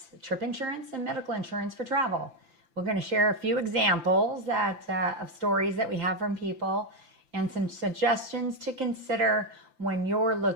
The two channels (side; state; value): left; late; 5.9 ms